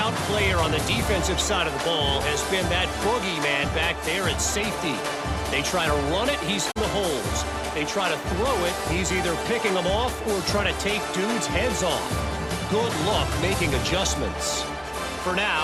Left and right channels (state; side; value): identical; both; correlation 1.00